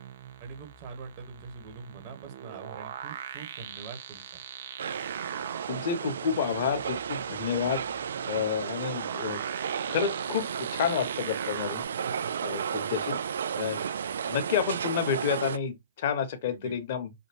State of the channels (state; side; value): inverted; both; correlation -0.46